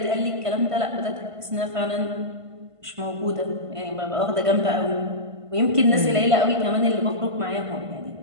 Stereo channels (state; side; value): late; left; 1.5 ms